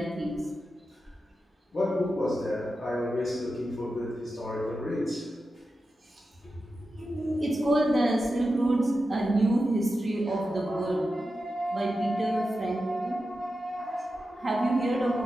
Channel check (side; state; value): both; normal; correlation 0.91